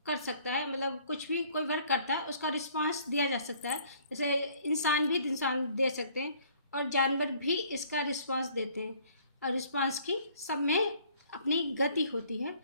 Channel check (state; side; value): inverted; both; correlation -0.58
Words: कर सकता है, मतलब कुछ भी कोई वर्क करता है उसका रिस्पॉन्स दिया जा सकता है, जैसे इंसान भी दे सकते हैं और जानवर भी इसका रिस्पॉन्स देते हैं और रिस्पॉन्स की सब में अपनी गति होती है,